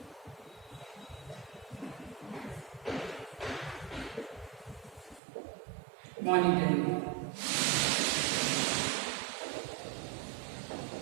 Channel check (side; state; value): left; drops out; at 5.2 s